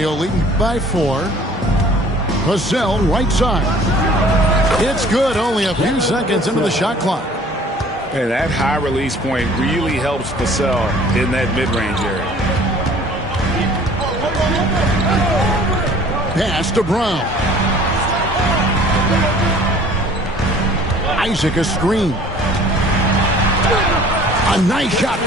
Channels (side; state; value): both; normal; correlation 0.51